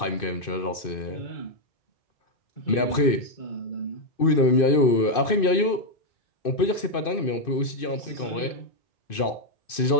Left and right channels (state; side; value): late; right; 2.6 ms